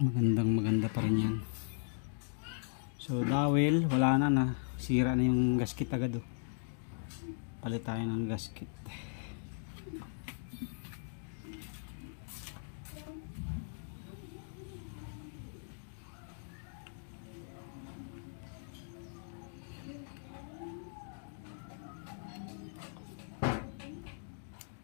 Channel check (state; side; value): silent; right; digital silence